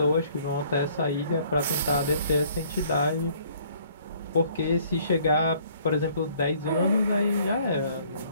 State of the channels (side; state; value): both; inverted; correlation -0.60